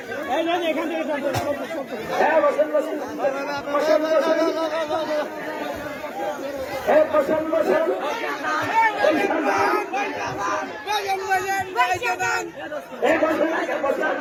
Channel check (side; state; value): both; identical; correlation 1.00